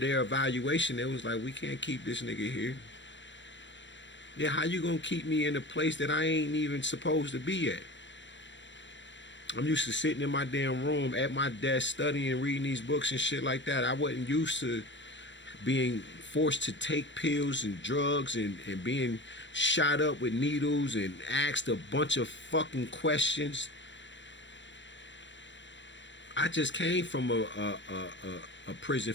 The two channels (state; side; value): late; right; 0.53 ms